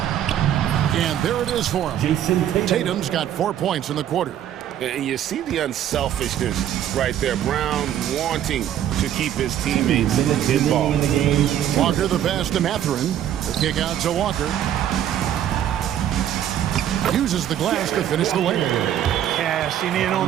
And there it is for him. Tatum's got 4 points in the quarter. And you see the unselfishness right there. Brown wanting to keep his teammates involved. Walker the pass to Mathurin. The kick out to Walker. Uses the glass to finish the layup. Cashing in on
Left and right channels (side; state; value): left; quieter; 10.8 dB